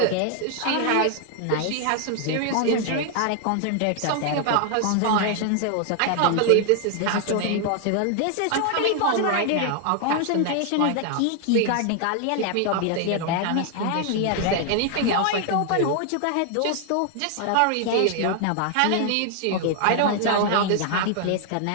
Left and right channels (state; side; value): different; both; correlation 0.00